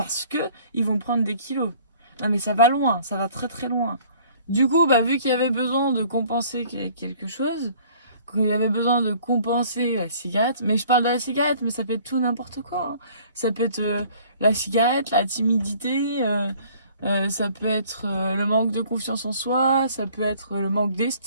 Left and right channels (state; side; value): inverted; both; correlation -0.54